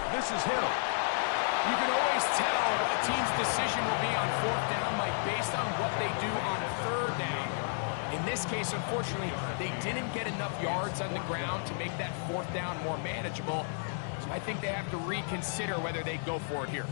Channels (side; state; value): right; silent; digital silence